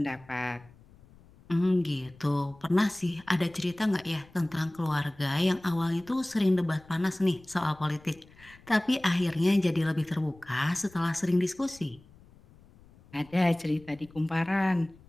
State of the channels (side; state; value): left; noise; rumble, 25 dB below the sound